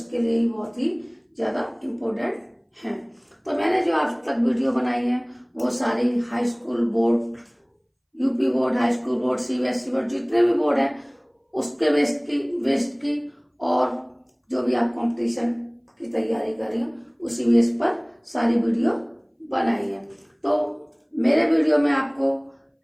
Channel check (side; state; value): both; identical; correlation 1.00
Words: लिए ही बहुत ही ज़्यादा इम्पोर्टेंट हैं। तो मैंने जो आज तक वीडियो बनाई है वो सारी high school board, UP board, high school board, CBSE board, जितने भी बोर्ड हैं उसके बेस्ड की और जो भी आप कंपटीशन की तैयारी कर रही हो उसी बेस पर सारी वीडियो बनाई है। तो मेरे वीडियो में आपको